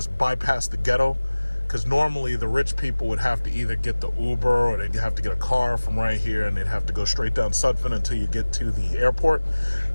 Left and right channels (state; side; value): inverted; both; correlation -1.00